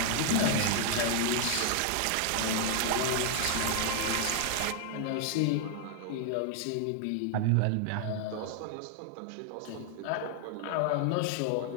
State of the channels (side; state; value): both; different; correlation 0.00